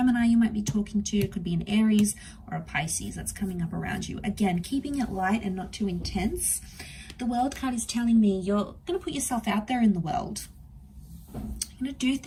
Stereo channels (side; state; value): both; identical; correlation 1.00